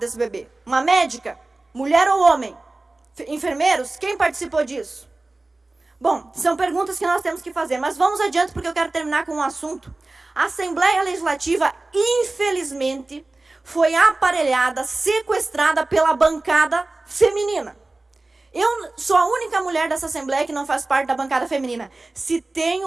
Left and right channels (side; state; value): left; quieter; 3.1 dB